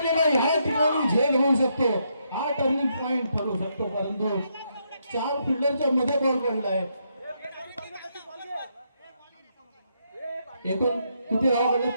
ह्या ठिकाणी झेल होऊ शकतो, हा टर्निंग पॉइंट ठरू शकतो, परंतु 4 फिल्डरच्या मध्ये बॉल पडलाय. एकूण किती धावा पडल्या?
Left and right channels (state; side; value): inverted; both; correlation -0.77